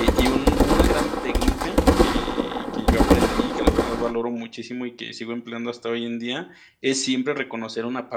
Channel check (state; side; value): identical; both; correlation 1.00